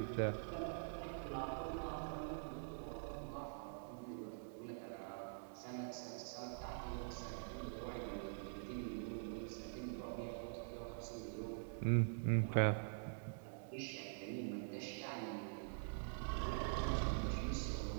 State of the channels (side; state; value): left; silent; digital silence